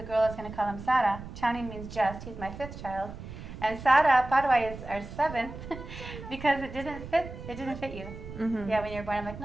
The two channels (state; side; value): noise; right; rumble, 12 dB below the sound